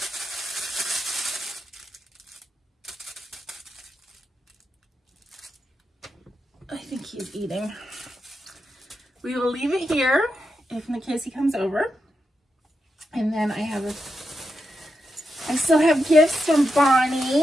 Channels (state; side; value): normal; both; correlation 0.86